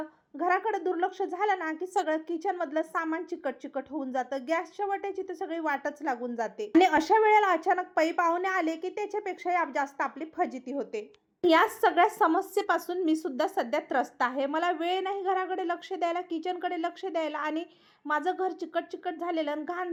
घराकडे दुर्लक्ष झालं ना की सगळं किचन मधलं सामान चिकट चिकट होऊन जातं. गॅसच्या वाट्याची तर सगळी वाटच लागून जाते आणि अशा वेळेला अचानक पै पाहुणे आले की त्याच्यापेक्षा जास्त आपली फजिती होते. या सगळ्या समस्येपासून मी सुद्धा सध्या त्रस्त आहे. मला वेळ नाही घराकडे लक्ष द्यायला, किचनकडे लक्ष द्यायला आणि माझं घर चिकट चिकट झालेलं आणि घाण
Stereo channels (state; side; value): identical; both; correlation 1.00